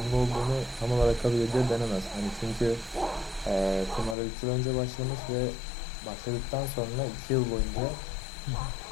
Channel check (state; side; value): drops out; right; at 4.2 s